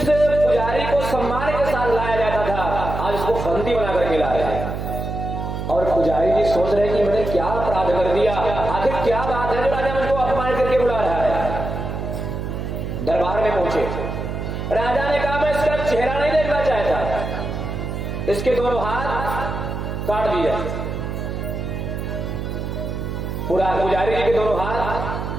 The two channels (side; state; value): right; noise; hum, 4 dB below the sound